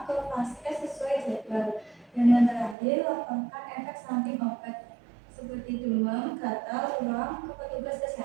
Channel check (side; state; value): left; drops out; at 2.8 s